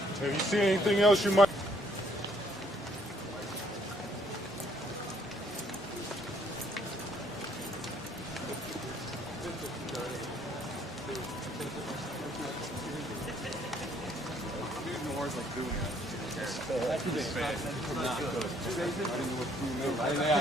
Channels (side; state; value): both; normal; correlation 0.65